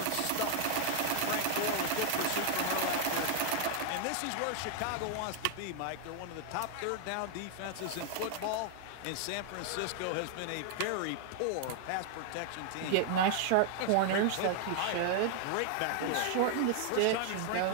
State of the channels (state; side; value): different; both; correlation 0.00